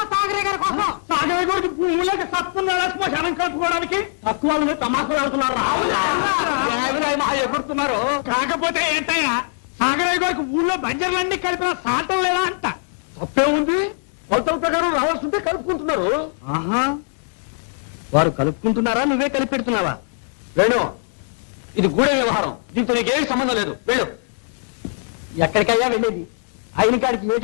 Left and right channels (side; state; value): right; silent; digital silence